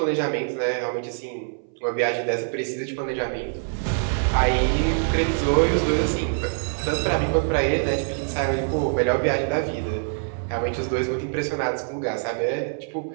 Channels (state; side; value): silent; left; 59 dB below the other